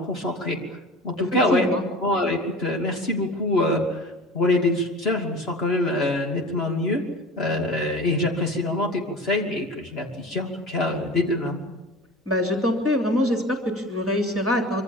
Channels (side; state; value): both; normal; correlation 0.37